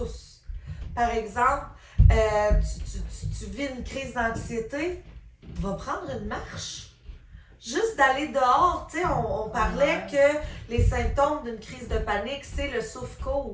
Par exemple, tu vis une crise d'anxiété, va prendre une marche. Juste d'aller dehors, tu sais, on parlait que les symptômes d'une crise de panique, c'est le souffle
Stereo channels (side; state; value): both; identical; correlation 1.00